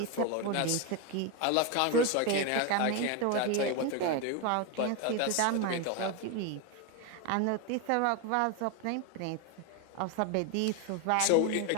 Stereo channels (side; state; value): both; different; correlation 0.02